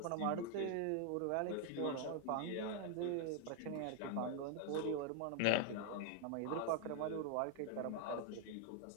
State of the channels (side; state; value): both; different; correlation 0.00